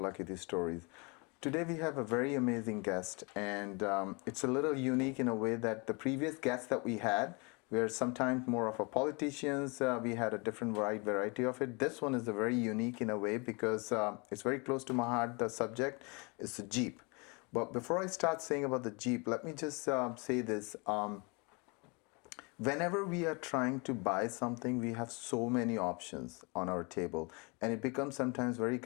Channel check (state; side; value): quieter; right; 30.3 dB